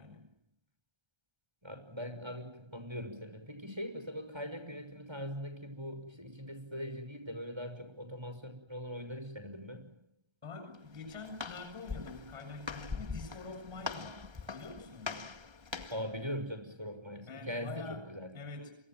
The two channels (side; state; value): left; late; 1.3 ms